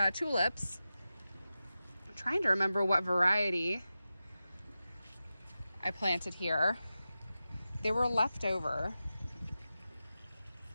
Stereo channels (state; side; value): inverted; both; correlation -0.93